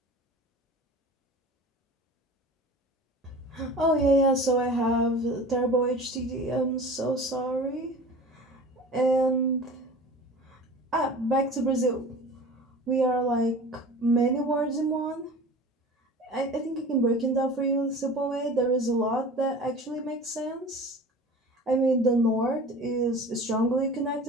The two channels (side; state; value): both; normal; correlation 0.39